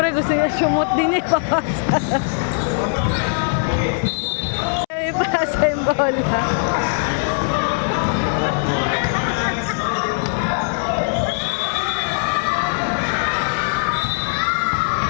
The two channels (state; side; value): silent; right; 66 dB below the other